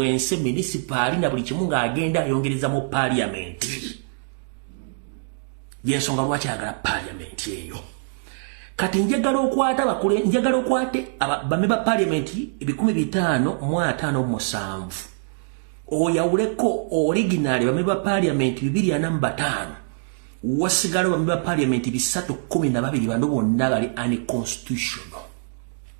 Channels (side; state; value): left; silent; digital silence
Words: municipal na buli kimu ng'agenda ayongereza mu Parliament. Yensonga lwaki ayagala Parliament eyo. Kati njagala okwate bameba Parliament 1557 oyawuleko original bameba Parliament 245 wasigala bameba Parliament 312 bano bonna bali unconstitutional.